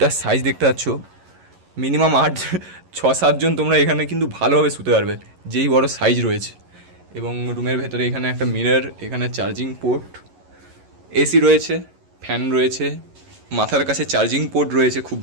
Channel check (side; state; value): left; late; 11 ms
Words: সাইজ দেখতে পাচ্ছ, মিনিমাম 6-7 জন তোমরা এখানে কিন্তু ভালোভাবে শুতে পারবে, যেই বড় সাইজ রয়েছে। এবং রুমের ভেতরে এখানে একটা মিরর, এখানে চার্জিং পোর্ট, এসি রয়েছে, ফ্যান রয়েছে, মাথার কাছে চার্জিং পোর্ট রয়েছে খুব